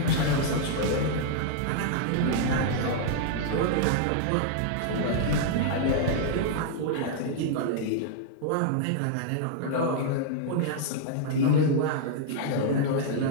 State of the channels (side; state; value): both; different; correlation -0.01